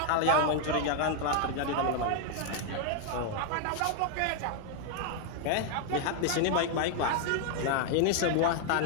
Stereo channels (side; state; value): both; different; correlation 0.00